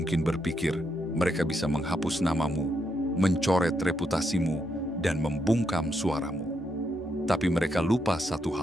berpikir mereka bisa menghapus namamu, mencoret reputasimu, dan membungkam suaramu. Tapi mereka lupa satu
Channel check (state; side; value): normal; both; correlation 0.79